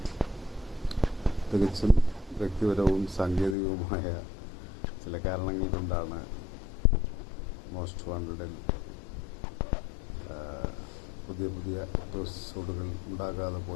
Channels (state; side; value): drops out; right; at 3.6 s